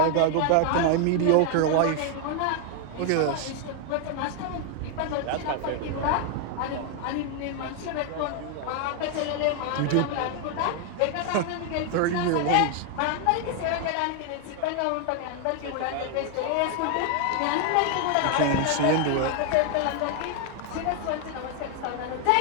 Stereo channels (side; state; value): both; different; correlation 0.00